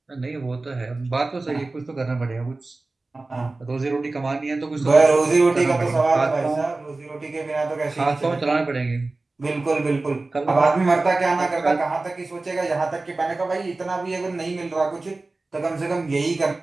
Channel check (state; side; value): quieter; left; 3.3 dB